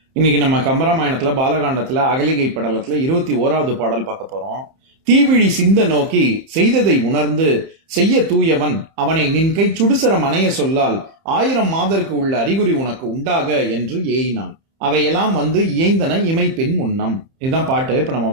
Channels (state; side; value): late; left; 30 ms